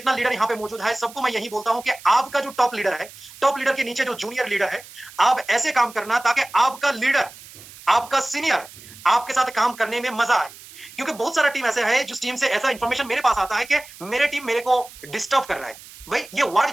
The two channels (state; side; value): noise; right; hiss, 19 dB below the sound